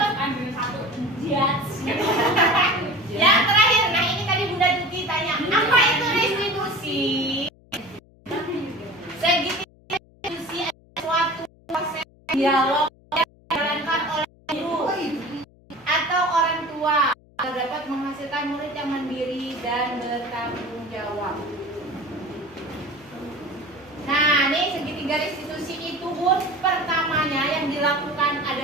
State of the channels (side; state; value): left; noise; hum, 28 dB below the sound